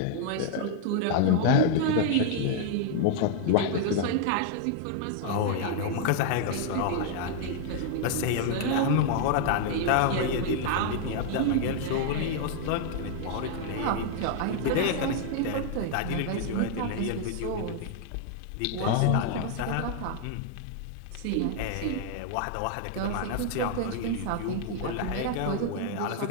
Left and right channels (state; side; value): different; both; correlation 0.00